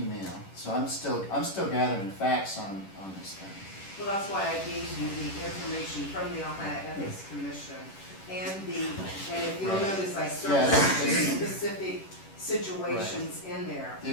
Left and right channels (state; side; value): late; right; 10 ms